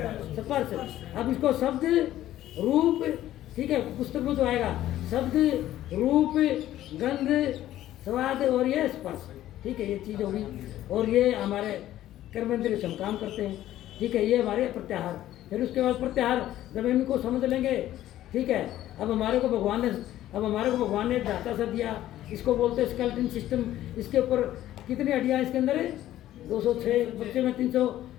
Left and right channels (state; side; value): quieter; right; 13.5 dB